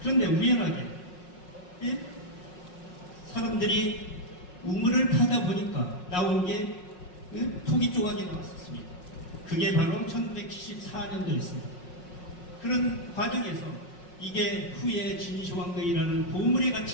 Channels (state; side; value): late; right; 5.5 ms